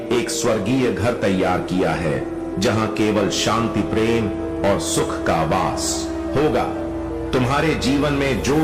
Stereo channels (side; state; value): both; identical; correlation 1.00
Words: एक स्वर्गीय घर तैयार किया है जहां केवल शांति, प्रेम और सुख का वास होगा। तुम्हारे जीवन में जो